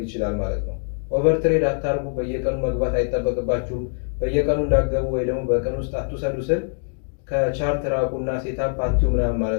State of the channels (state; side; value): silent; right; digital silence